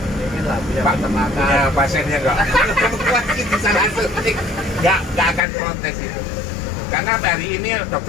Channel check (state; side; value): drops out; right; at 5.5 s